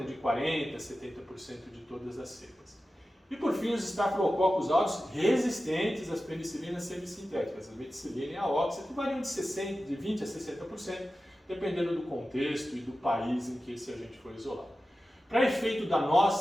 de 40% a 70% de todas as cepas. E por fim, os Staphylococcus aureus resistentes às penicilinas semissintéticas, a meticilina e a oxa, que variam de 20% a 60%, dependendo do contexto e do país em que esse agente foi isolado. Para efeito da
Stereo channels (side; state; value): both; normal; correlation 0.94